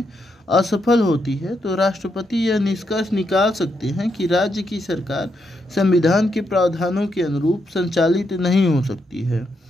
असफल होती है तो राष्ट्रपति यह निष्कर्ष निकाल सकते हैं कि राज्य की सरकार संविधान के प्रावधानों के अनुरूप संचालित नहीं हो सकती है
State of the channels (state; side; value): normal; both; correlation 0.80